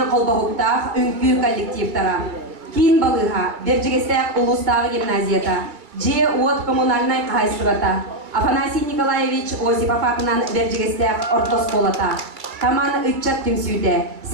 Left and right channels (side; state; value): left; late; 2.2 ms